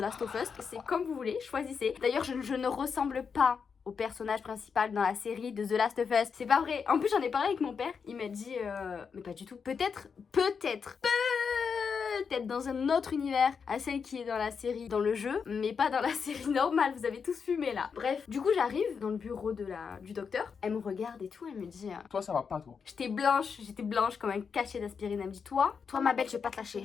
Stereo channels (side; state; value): right; quieter; 6.0 dB